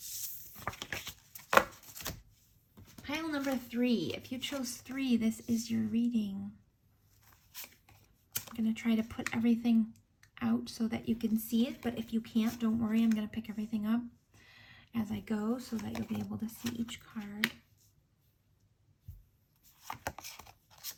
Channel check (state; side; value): identical; both; correlation 1.00